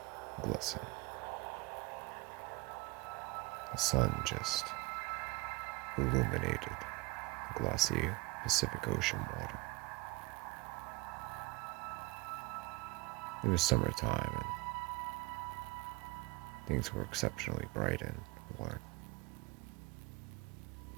glisten. The sun just illuminated the glossy Pacific Ocean water. It was summertime and things were exceptionally bright and warm.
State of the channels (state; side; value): quieter; left; 23.4 dB